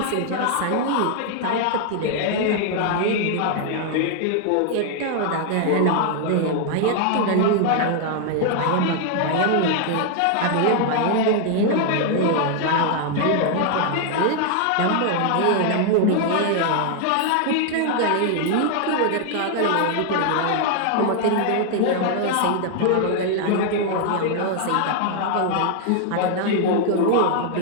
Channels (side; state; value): both; different; correlation 0.00